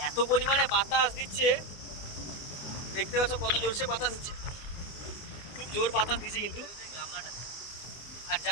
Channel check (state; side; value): late; right; 24 ms